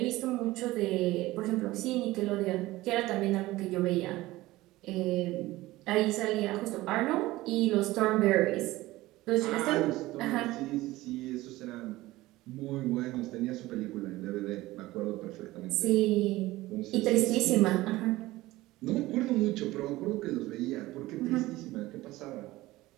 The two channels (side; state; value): left; quieter; 18.1 dB